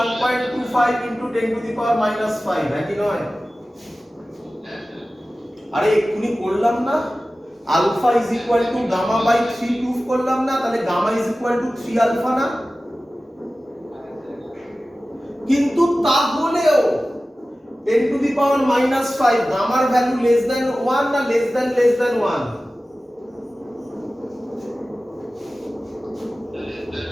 into 10 to the power -5, নাকি নয়? আরে এক্ষুনি করলাম না, alpha is equal to gamma by 3 proof করলাম না? তাহলে gamma is equal to 3 alpha না? কিন্তু তাহলেও 10 টু দি পাওয়ার -5 গামার ভ্যালু লেস দ্যান 1 না লেস দ্যান 1?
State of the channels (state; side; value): normal; both; correlation 0.96